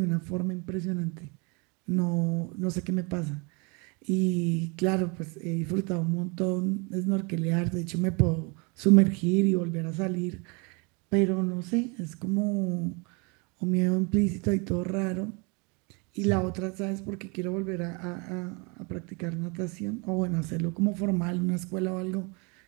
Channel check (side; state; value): left; quieter; 31.0 dB